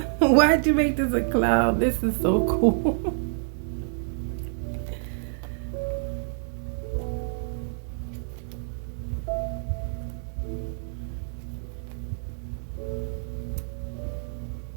Why'd you make this a clown? This is so cool.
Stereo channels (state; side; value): silent; left; 60 dB below the other